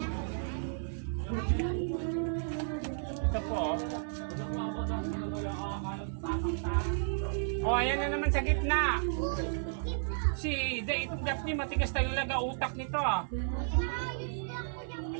Ito po. Oh, ayan na naman sa gitna. Si itong Daphne, matigas talaga utak nito ah.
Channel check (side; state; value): left; silent; 56 dB below the other